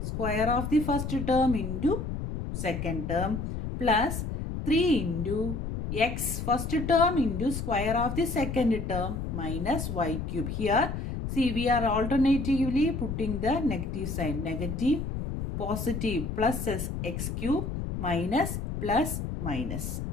of the first term into second term plus 3 into x first term into square of the second term minus y cube. Here see we are alternatively putting the negative sign, negative, positive, plus x cube minus plus minus.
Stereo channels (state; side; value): noise; left; rumble, 4 dB below the sound